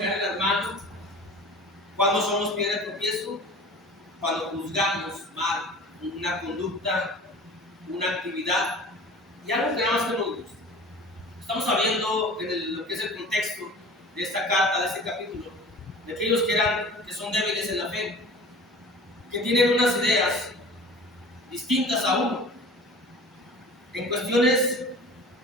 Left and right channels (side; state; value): both; normal; correlation 0.40